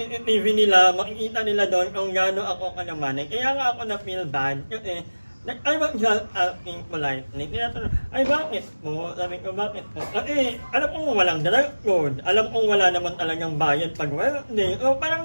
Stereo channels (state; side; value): inverted; both; correlation -1.00